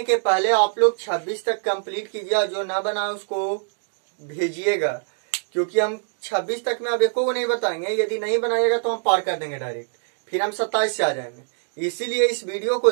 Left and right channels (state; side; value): silent; left; digital silence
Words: के पहले आप लोग 26 तक कंप्लीट कीजिए, जो ना बना उसको भेजिएगा, क्योंकि हम 26 तक में अब एको को नहीं बताएंगे। यदि नहीं बनाइएगा तो हम पार कर देंगे डायरेक्ट, फिर हम 27 से आ जाएंगे। इसीलिए इस वीडियो को